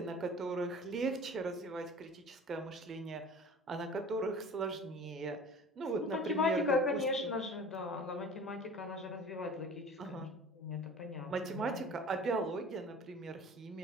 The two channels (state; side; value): normal; both; correlation 0.42